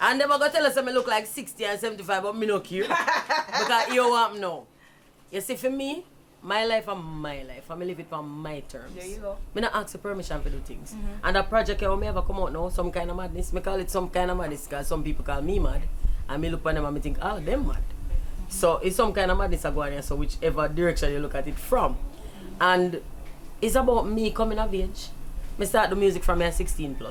And they gonna tell us that me look like 60 and 75, but me no care. Because you want me now. You see, for me, my life and my life. I live it on my terms. There you go. Me not ask for permission for do things. And that project when me ever come out now, some kind of madness. Me call it some kind of madness because some people call me mad. And me look at them and me think, oh, them mad. So it's some kind of madness I go on here, so whichever direction you look at it from. And it's about me coming of age. Me start the music from me at 16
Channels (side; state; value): both; identical; correlation 1.00